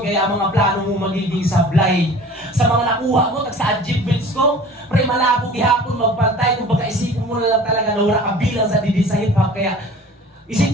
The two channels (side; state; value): both; normal; correlation 0.44